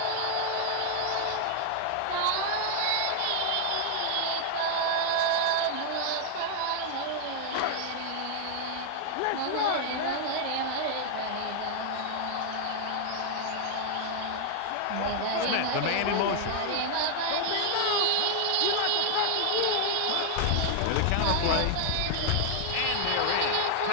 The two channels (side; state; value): both; different; correlation 0.00